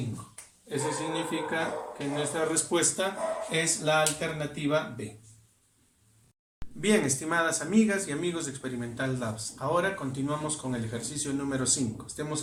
Eso significa que nuestra respuesta es la alternativa B. Bien, estimadas amigas y amigos de Experimental Labs, ahora continuamos con el ejercicio número 5.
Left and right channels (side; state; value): both; identical; correlation 1.00